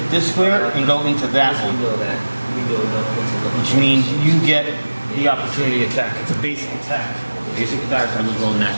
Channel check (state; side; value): inverted; both; correlation -1.00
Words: this square and go into that we one, know that. We know that. which means you get the opportunity attack. It's a basic attack. Basic attacks. I just roll net.